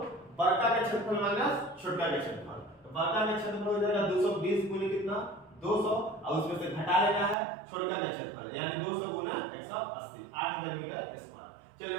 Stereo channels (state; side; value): drops out; left; at 7.4 s